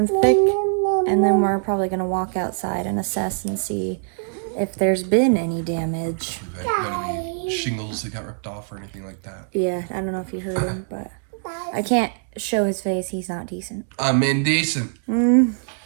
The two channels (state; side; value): silent; left; digital silence